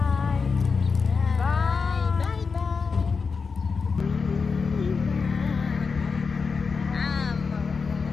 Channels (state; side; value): quieter; right; 5.1 dB